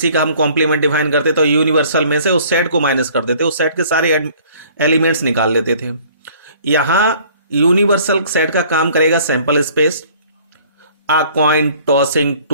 का हम कॉम्प्लीमेंट डिफाइन करते तो यूनिवर्सल में से उस सेट को माइनस कर देते, उस सेट के सारे एलिमेंट्स निकाल लेते थे। यहां यूनिवर्सल सेट का काम करेगा sample space, a coin tossing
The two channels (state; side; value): inverted; both; correlation -0.54